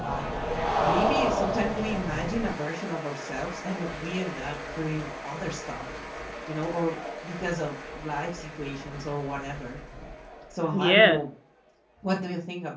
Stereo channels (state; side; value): identical; both; correlation 1.00